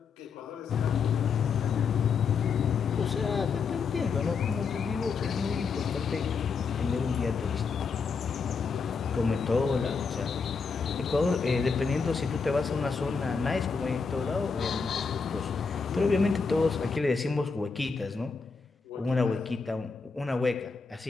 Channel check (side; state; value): right; quieter; 5.2 dB